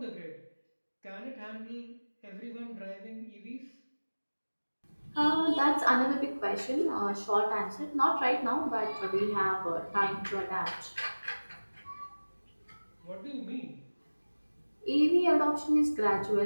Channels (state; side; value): inverted; both; correlation -1.00